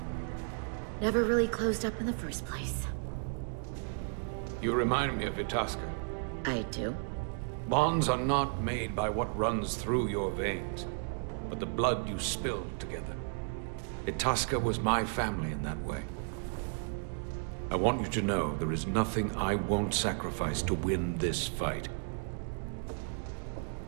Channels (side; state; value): left; silent; 55 dB below the other